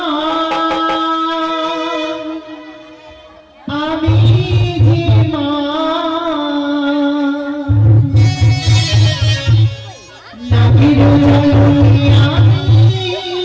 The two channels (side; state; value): both; identical; correlation 1.00